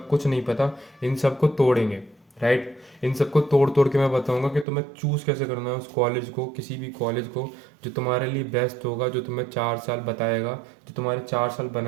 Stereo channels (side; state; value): left; drops out; at 4.7 s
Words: कुछ नहीं पता, इन सबको तोड़ेंगे, राइट? इन सबको तोड़ तोड़ के मैं बताऊंगा कि तुम्हें चूज़ कैसे करना है उस कॉलेज को, किसी भी कॉलेज को जो तुम्हारे लिए बेस्ट होगा, जो तुम्हें 4 साल बताएगा, जो तुम्हारे 4 साल